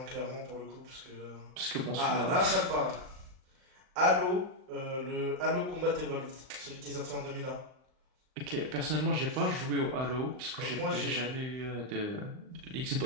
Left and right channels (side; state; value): left; late; 39 ms